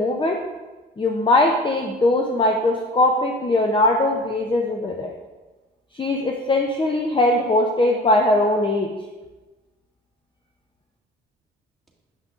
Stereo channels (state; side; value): normal; both; correlation 0.40